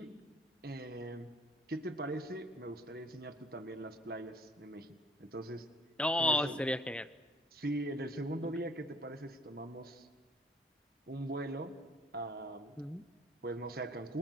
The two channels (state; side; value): normal; both; correlation 0.57